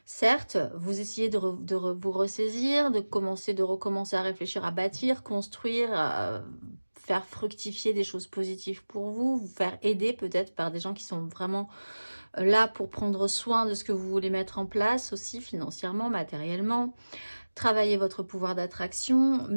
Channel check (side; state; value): both; inverted; correlation -1.00